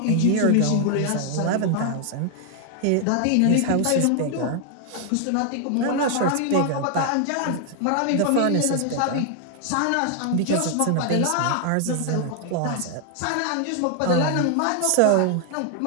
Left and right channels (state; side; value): different; both; correlation 0.00